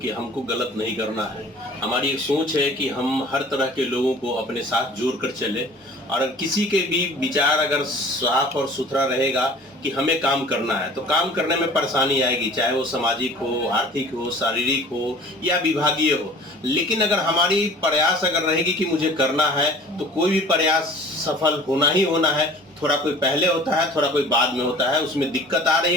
कि हमको गलत नहीं करना है। हमारी एक सोच है कि हम हर तरह के लोगों को अपने साथ जोड़ कर चले, और किसी के भी विचार अगर साफ और सुथरा रहेगा कि हमें काम करना है तो काम करने में परेशानी आएगी, चाहे वो सामाजिक हो, आर्थिक हो, शारीरिक हो या विभागीय हो। लेकिन अगर हमारी प्रयास अगर रहेगी कि मुझे करना है तो कोई भी प्रयास सफल होना ही होना है। थोड़ा कोई पहले होता है, थोड़ा कोई बाद में होता है, उसमें दिक्कत आ रही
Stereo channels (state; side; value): normal; both; correlation 0.47